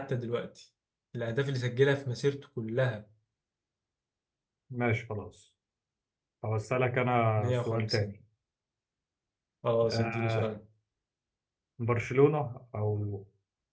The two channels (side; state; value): both; identical; correlation 1.00